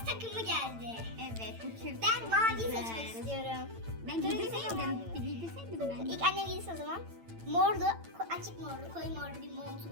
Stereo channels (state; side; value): late; left; 8.9 ms